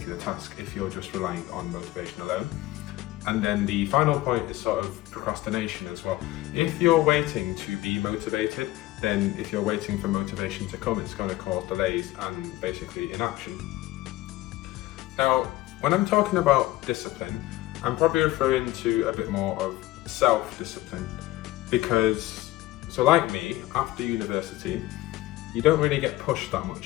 task if you're just relying on motivation alone. And then the final point is sort of procrastination as well. If you're waiting to be motivated, then if you're waiting for motivation to come, it's going to cause delays and basically inaction. Now, when I'm talking about discipline, I'm probably referring to a bit more of self-discipline because, so like me, after university, you don't really get pushed that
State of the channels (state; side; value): quieter; right; 17.1 dB